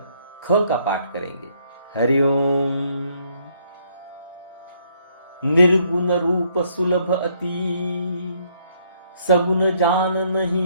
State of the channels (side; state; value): both; inverted; correlation -0.69